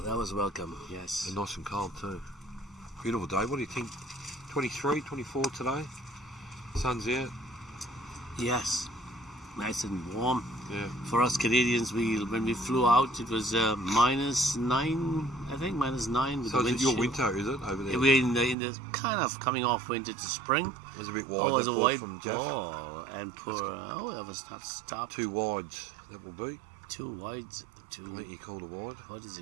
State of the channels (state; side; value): drops out; left; at 18.6 s